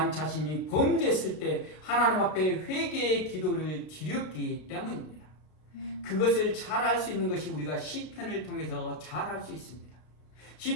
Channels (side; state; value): right; late; 33 ms